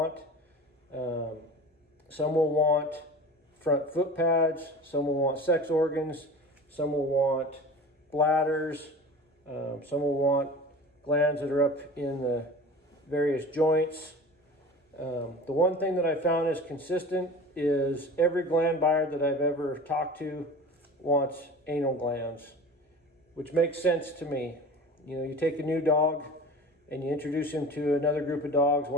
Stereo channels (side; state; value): both; normal; correlation 0.36